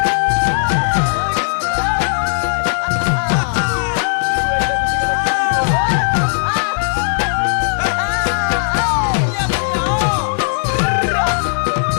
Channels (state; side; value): silent; right; digital silence